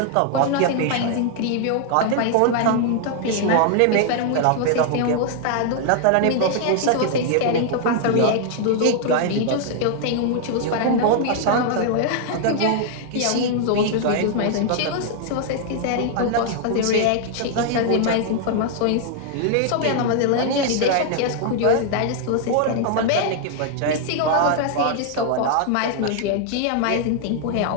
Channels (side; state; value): both; different; correlation 0.00